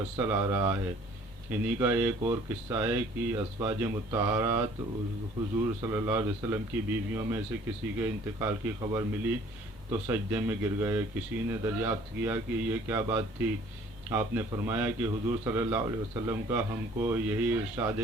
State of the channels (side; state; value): both; normal; correlation 0.55